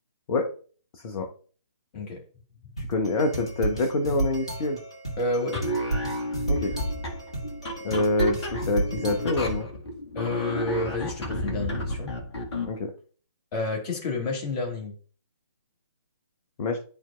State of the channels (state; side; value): inverted; both; correlation -0.43